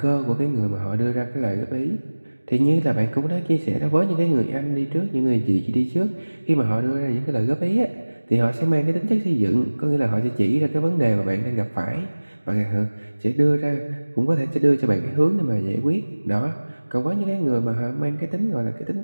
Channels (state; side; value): inverted; both; correlation -1.00